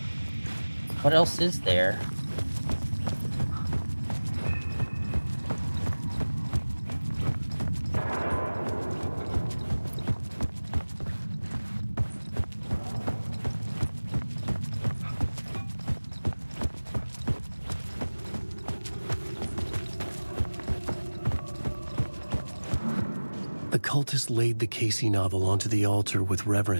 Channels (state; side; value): inverted; both; correlation -1.00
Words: What else is there? The cultists laid the Casey novel onto the altar with